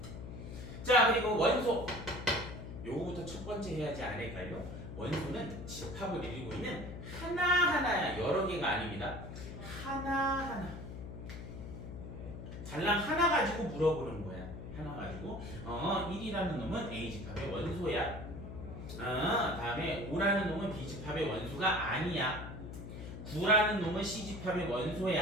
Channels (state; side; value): noise; left; hum, 9 dB below the sound